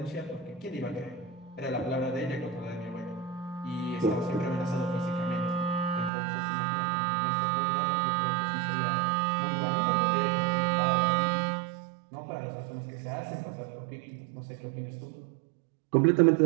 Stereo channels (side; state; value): left; drops out; at 6.1 s